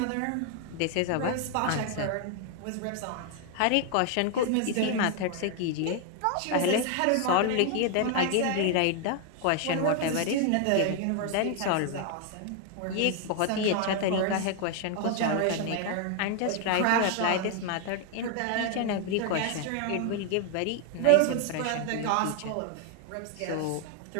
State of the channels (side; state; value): both; different; correlation 0.01